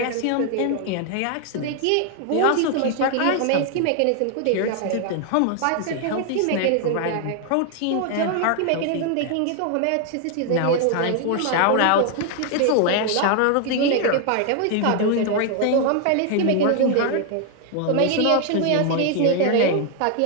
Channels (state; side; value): different; both; correlation 0.00